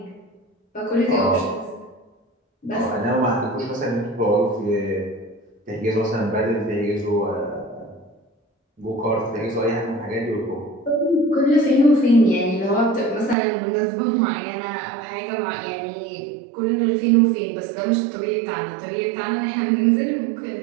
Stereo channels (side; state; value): left; drops out; at 13.4 s